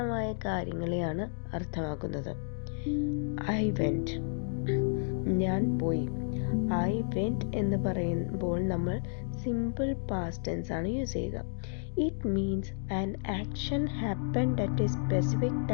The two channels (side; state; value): right; silent; digital silence